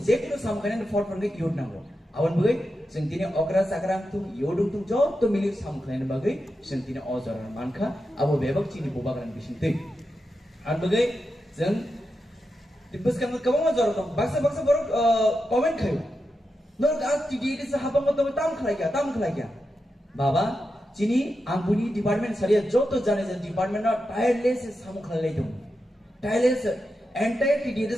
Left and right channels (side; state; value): both; normal; correlation 0.88